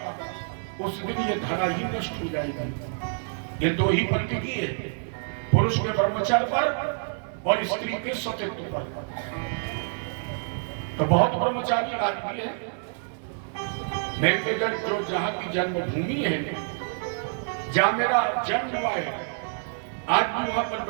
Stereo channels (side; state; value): left; silent; digital silence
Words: उस दिन ये धरा ही नष्ट हो जाएगी। ये 2 ही पंक्ति की है, पुरुष के ब्रह्मचर्य पर और स्त्री के सतीत्व पर। तो बहुत ब्रह्मचारी आदमी है मेरे जो जहां की जन्मभूमि है, जहां मेरा जन्म हुआ है, आज भी वहां पर